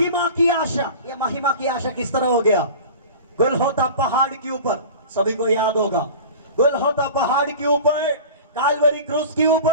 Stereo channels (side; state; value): both; inverted; correlation -0.36